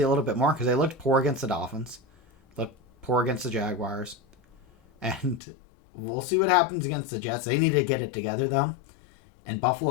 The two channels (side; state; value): right; drops out; at 5.4 s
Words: a little bit more because they looked poor against the Dolphins. Looked poor against the Jaguars. And we'll see what happens against the Jets. They need to get it together, though. And